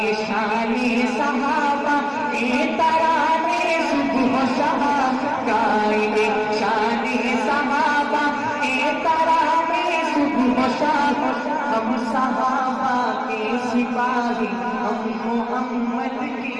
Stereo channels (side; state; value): both; identical; correlation 1.00